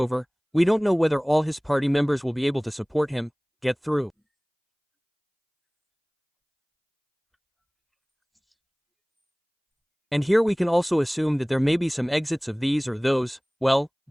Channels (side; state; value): both; identical; correlation 1.00